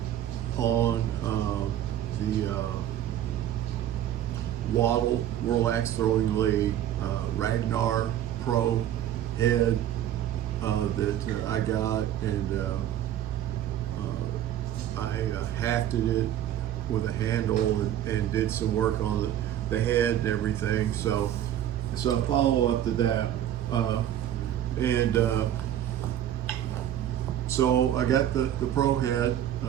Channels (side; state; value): left; quieter; 11.3 dB